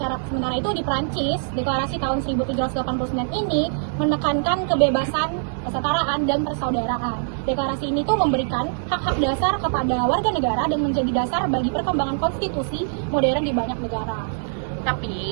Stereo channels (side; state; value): left; silent; digital silence